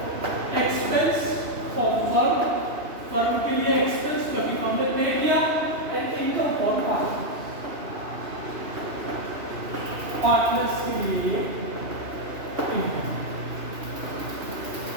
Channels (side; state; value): left; late; 2.8 ms